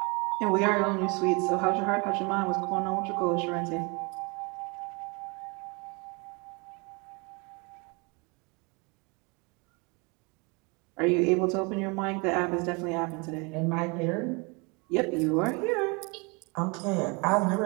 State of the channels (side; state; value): left; quieter; 29.9 dB